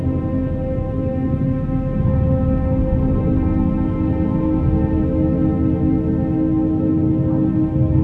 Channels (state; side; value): identical; both; correlation 1.00